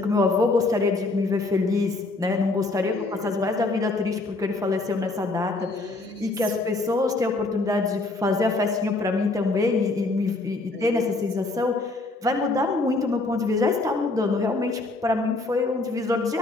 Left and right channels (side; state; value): right; quieter; 3.2 dB